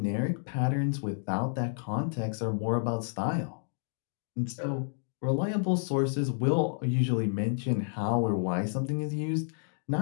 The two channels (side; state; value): right; silent; digital silence